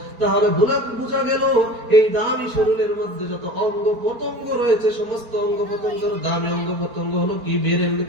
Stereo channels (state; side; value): late; left; 4.4 ms